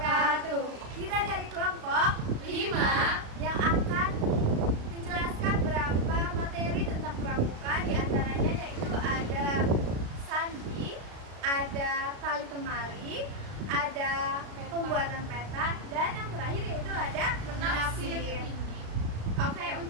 Kita dari kelompok 5 yang akan menjelaskan beberapa materi tentang pramuka. Di antaranya yaitu ada sandi, ada tali temali, ada pembuatan peta, dan yang terakhir yaitu ada menafsir. Oke,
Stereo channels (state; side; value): late; left; 36 ms